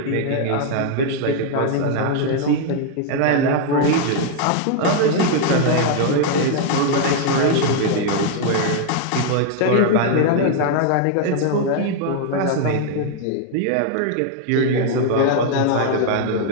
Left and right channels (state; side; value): different; both; correlation 0.00